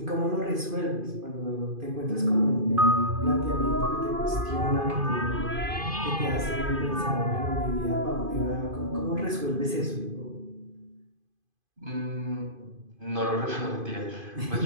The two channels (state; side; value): late; left; 2.5 ms